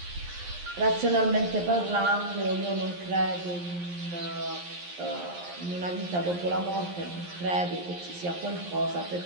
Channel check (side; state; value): left; late; 11 ms